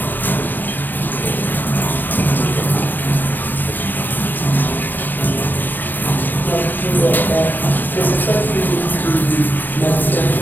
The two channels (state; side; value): late; right; 0.090 ms